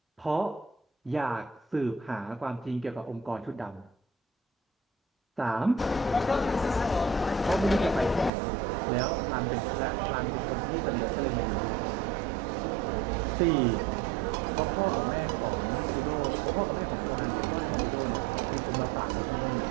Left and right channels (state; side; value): drops out; left; at 8.3 s